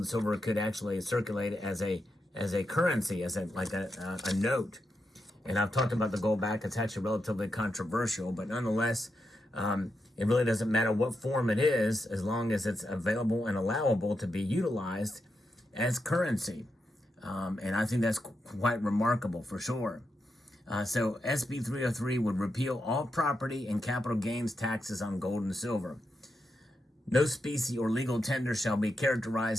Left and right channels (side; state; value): both; normal; correlation 0.85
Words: silver could actually circulate as a currency, as a note. And I've talked about the gold back. It's actually relatively controversial, but nonetheless, it really doesn't matter what form it is, as long as it's available and allowable to be utilized as currency. And I think that's quite remarkable for sure. So SB 303 would repeal all property and capital gains taxes on gold and silver. No specie or legal tender shall be